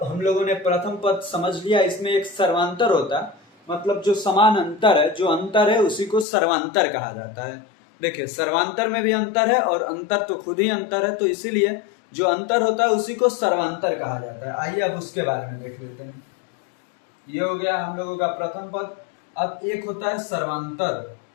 हम लोगों ने प्रथम पद समझ लिया। इसमें एक सर्वांतर होता है, मतलब जो समान अंतर है, जो अंतर है उसी को सर्वांतर कहा जाता है। देखिए, सर्वांतर में भी अंतर है और अंतर तो खुद ही अंतर है, तो इसीलिए जो अंतर होता है उसी को सर्वांतर कहा जाता है। आइए अब उसके बारे में देख लेते हैं। ये हो गया हम लोगों का प्रथम पद। अब एक होता है सर्वांतर।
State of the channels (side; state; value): right; drops out; at 6.2 s